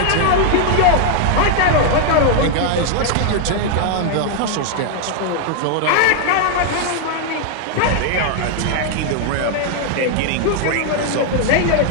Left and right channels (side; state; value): both; different; correlation 0.00